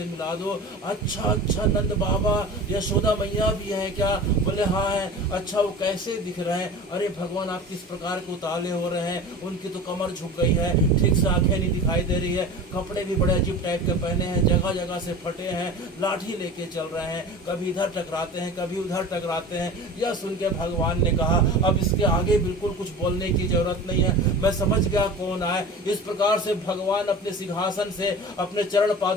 मिला दो। अच्छा नंद बाबा, यशोदा मैया भी है क्या? बोले हाँ है। अच्छा वो कैसे दिख रहे हैं? अरे भगवान आप किस प्रकार के उताले हो रहे हैं, उनकी तो कमर झुक गई है, ठीक से आंखें नहीं दिखाई दे रही है, कपड़े भी बड़े अजीब टाइप के पहने हैं, जगह जगह से फटे हैं, लाठी लेके चल रहे हैं, कभी इधर टकराते हैं कभी उधर टकराते हैं। यह सुन के भगवान ने कहा अब इसके आगे बिल्कुल कुछ बोलने की जरूरत नहीं है, मैं समझ गया कौन आए। इस प्रकार से भगवान अपने सिंहासन से अपने चरण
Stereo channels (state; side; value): normal; both; correlation 0.36